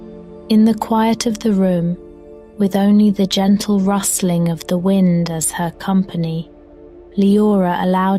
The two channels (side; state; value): both; identical; correlation 1.00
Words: In the quiet of the room, with only the gentle rustling of the wind as her company, Liora